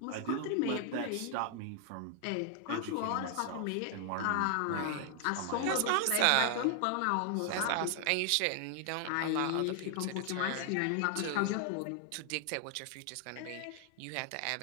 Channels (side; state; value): both; different; correlation 0.00